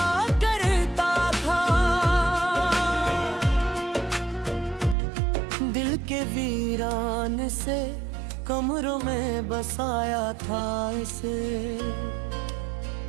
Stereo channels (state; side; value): drops out; left; at 5.0 s